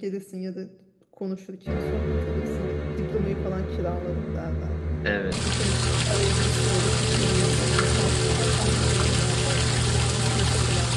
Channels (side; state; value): both; identical; correlation 1.00